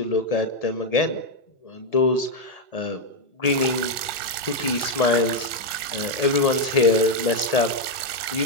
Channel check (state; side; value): late; right; 1.8 ms